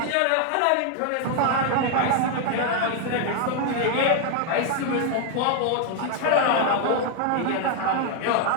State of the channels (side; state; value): both; different; correlation 0.00